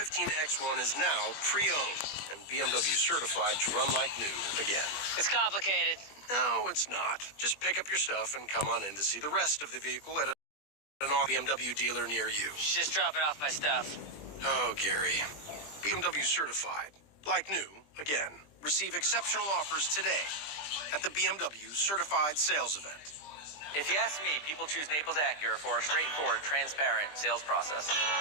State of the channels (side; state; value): right; late; 20 ms